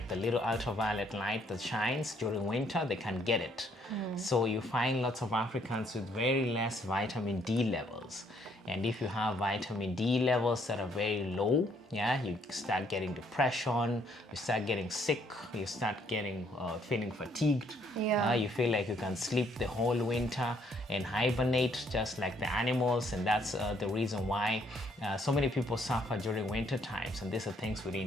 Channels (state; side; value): normal; both; correlation 0.67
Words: the little ultraviolet light that shines during winter, they can get it. So you find lots of Africans with very less vitamin D levels. And if you have vitamin D levels that are very low, yeah, you start getting depression, you start getting sick, you start getting feeling fatigued. Yeah. You feel like you can sleep the whole winter and hibernate just like the animals, and that's the reason why so many people suffer during winter times, and these are things we